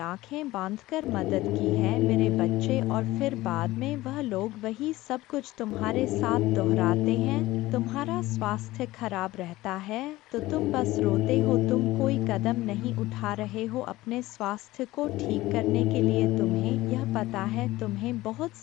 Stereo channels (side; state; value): right; quieter; 17.8 dB